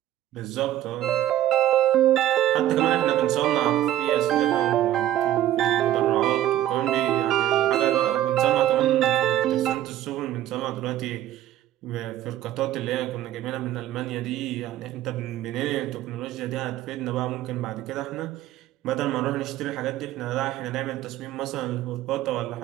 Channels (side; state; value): left; quieter; 12.9 dB